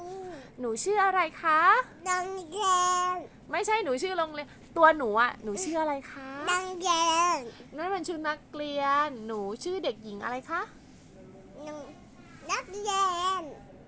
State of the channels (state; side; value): identical; both; correlation 1.00